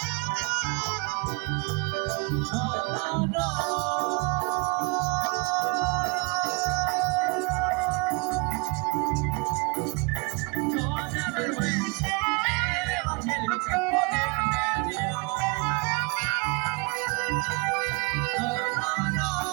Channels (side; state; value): left; quieter; 30.3 dB